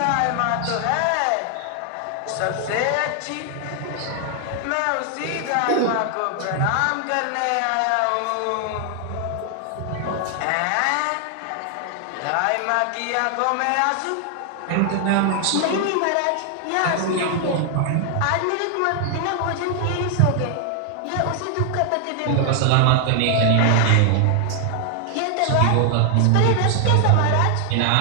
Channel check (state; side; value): different; both; correlation 0.00